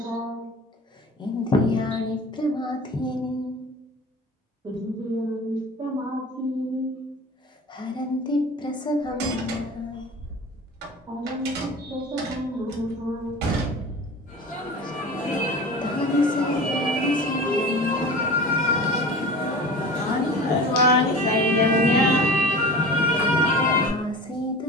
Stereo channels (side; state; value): both; normal; correlation 0.37